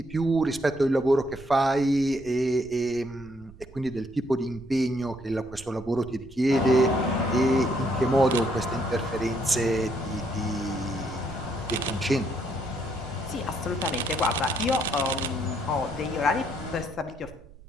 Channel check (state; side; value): noise; right; rumble, 20 dB below the sound